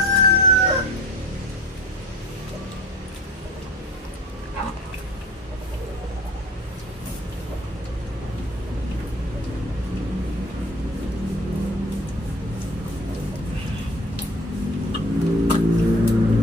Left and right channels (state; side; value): normal; both; correlation 0.43